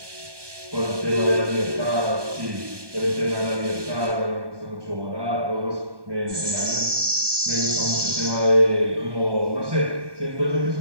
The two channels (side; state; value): left; late; 1.2 ms